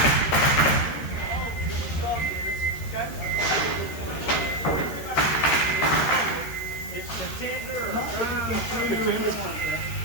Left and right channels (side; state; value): right; late; 13 ms